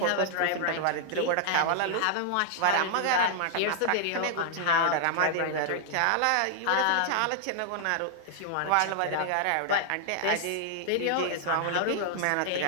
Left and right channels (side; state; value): both; different; correlation -0.01